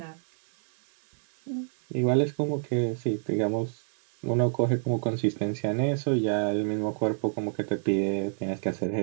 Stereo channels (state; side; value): silent; left; 60 dB below the other